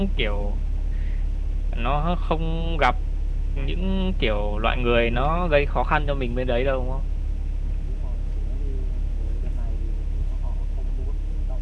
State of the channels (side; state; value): both; identical; correlation 1.00